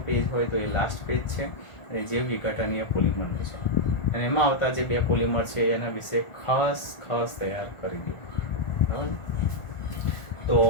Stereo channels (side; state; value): right; late; 1.4 ms